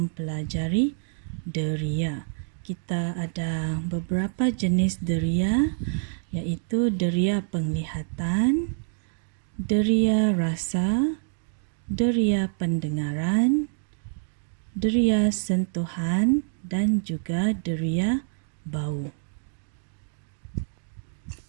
deria. Kita ada beberapa jenis deria, iaitu deria penglihatan, deria rasa, deria pendengaran, deria sentuhan dan juga deria bau.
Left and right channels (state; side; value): silent; left; digital silence